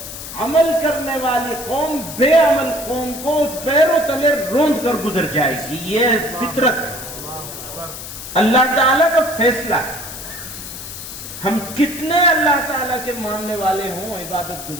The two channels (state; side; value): noise; left; hiss, 10 dB below the sound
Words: عمل کرنے والی قوم بے عمل قوم کو پیروں تلے روند کر گزر جائے گی. یہ فطرت ہے، اللہ تعالیٰ کا فیصلہ ہے. ہم کتنے اللہ تعالیٰ کے ماننے والے ہوں، عبادت